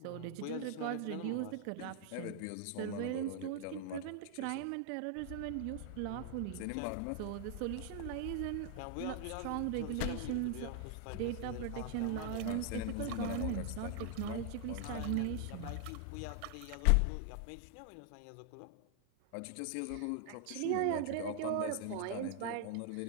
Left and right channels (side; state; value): both; different; correlation 0.00